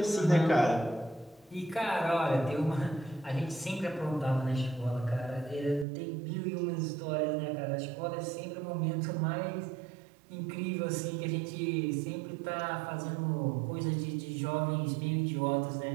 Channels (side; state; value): left; drops out; at 5.9 s